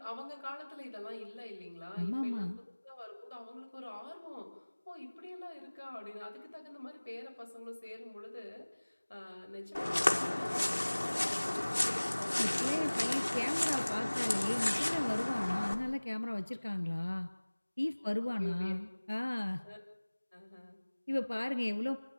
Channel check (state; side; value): inverted; both; correlation -1.00